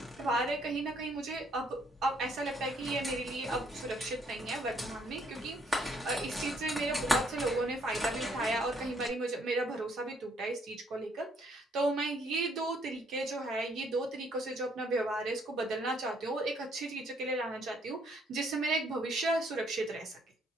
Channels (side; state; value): both; normal; correlation 0.67